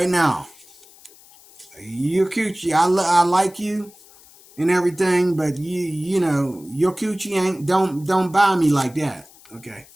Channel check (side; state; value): left; noise; hiss, 25 dB below the sound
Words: now. Your coochie, I like you and everything, but your coochie ain't, don't buy me like that. Okay.